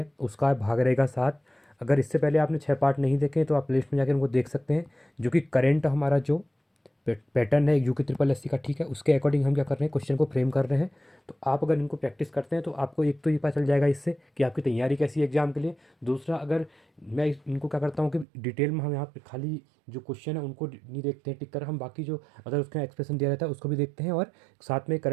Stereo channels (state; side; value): drops out; left; at 18.2 s